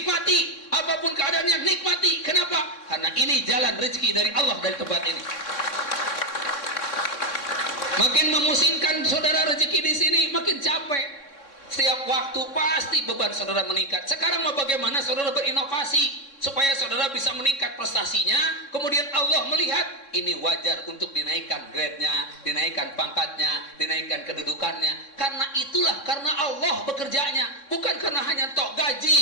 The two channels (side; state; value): right; late; 3.6 ms